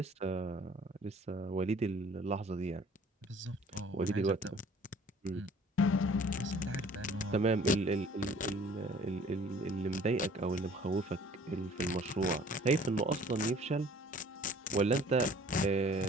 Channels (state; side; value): normal; both; correlation 0.52